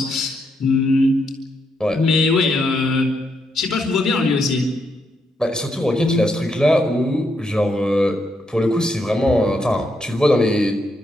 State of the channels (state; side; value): normal; both; correlation 0.79